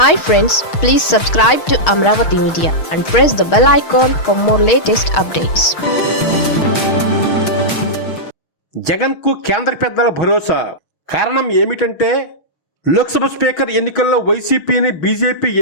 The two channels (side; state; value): right; late; 6.4 ms